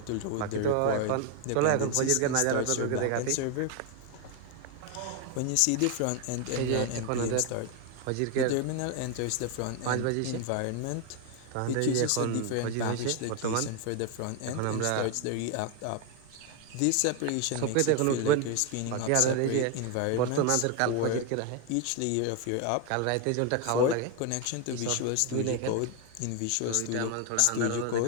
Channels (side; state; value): both; different; correlation 0.01